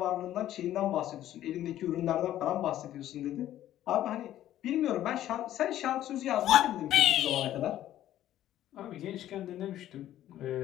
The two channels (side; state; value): right; quieter; 12.7 dB